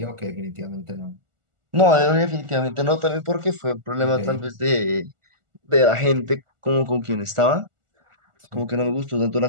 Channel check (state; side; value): late; left; 1.4 ms